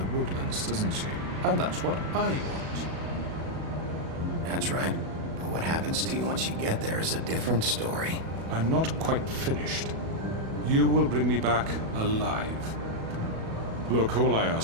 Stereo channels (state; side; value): late; left; 37 ms